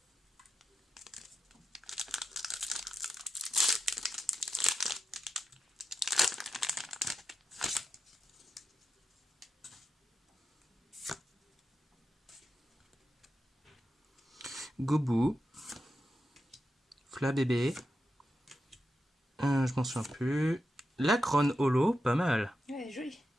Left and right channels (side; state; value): both; normal; correlation 0.88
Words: Goubou, Flabébé, je m'en souviens plus. Lacron Holo, pas mal. Ouais, joli.